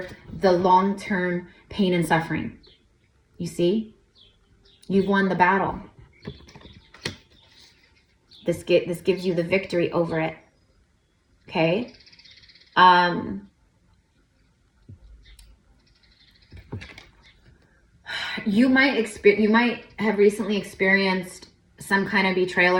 the long-term pain and suffering. You see? You've won the battle. This gives you the victory over it. Okay? You might have recently experienced some kind of betrayal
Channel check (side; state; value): both; identical; correlation 1.00